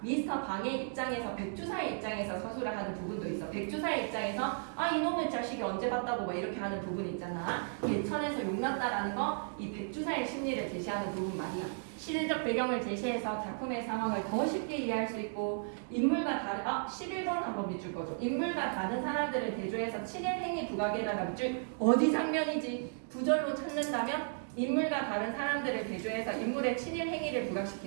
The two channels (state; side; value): silent; left; digital silence